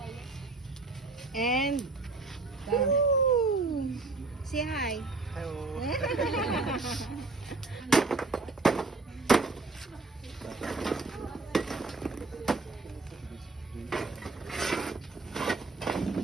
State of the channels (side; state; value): left; quieter; 3.6 dB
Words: And say hi. Hello.